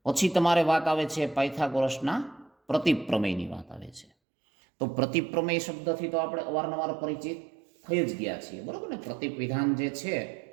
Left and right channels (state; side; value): drops out; left; at 4.1 s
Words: પછી તમારે વાત આવે છે પાયથાગોરસના પ્રતીપ પ્રમેયની વાત આવે છે. તો પ્રતીપ પ્રમેય શબ્દથી તો આપણે અવારનવાર પરિચિત થઈ જ ગયા છીએ. બરાબર ને? પ્રતીપ વિધાન જે છે